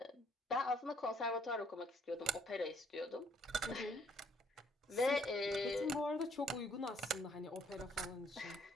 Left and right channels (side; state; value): both; normal; correlation 0.66